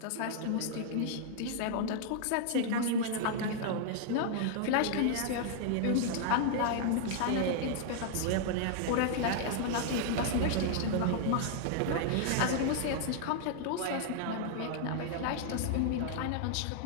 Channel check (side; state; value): both; different; correlation -0.01